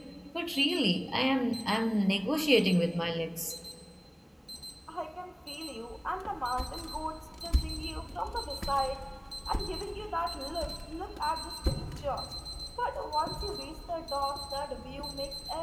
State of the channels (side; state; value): both; identical; correlation 1.00